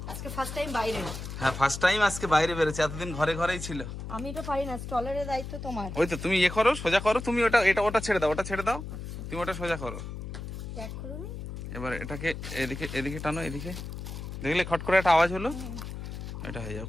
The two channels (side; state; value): left; noise; hum, 8 dB below the sound